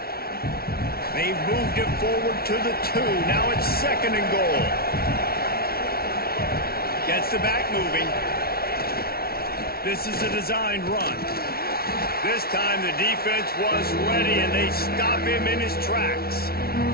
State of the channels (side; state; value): right; late; 0.44 ms